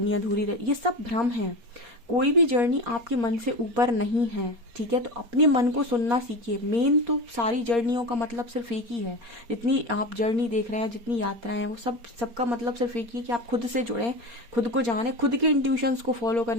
अधूरी रहे। ये सब भ्रम है। कोई भी जर्नी आपके मन से ऊपर नहीं है, ठीक है। तो अपने मन को सुनना सीखिए। मेन तो सारी जर्नियों का मतलब सिर्फ एक ही है। जितनी आप जर्नी देख रहे हैं, जितनी यात्राएं हैं, वो सबका मतलब सिर्फ एक ही है कि आप खुद से जुड़ें, खुद को जानें, खुद के इंट्यूशंस को फॉलो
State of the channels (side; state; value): left; late; 4.3 ms